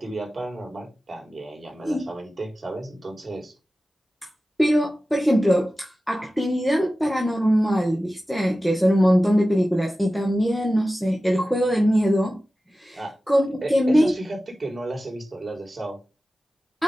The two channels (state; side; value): normal; both; correlation 0.95